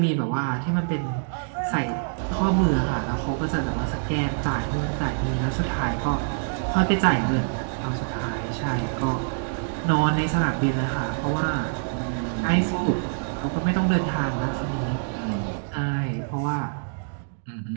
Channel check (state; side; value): silent; left; digital silence